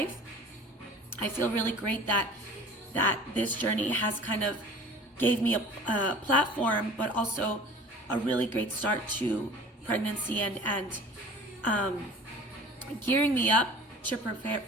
I feel really great that this journey has kind of gave me a platform, but also a really great start to pregnancy and gearing me up to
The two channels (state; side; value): normal; both; correlation 0.44